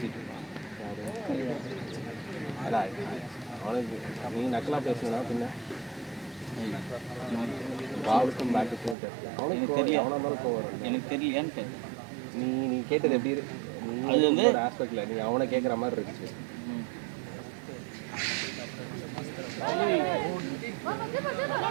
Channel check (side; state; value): left; drops out; at 9.0 s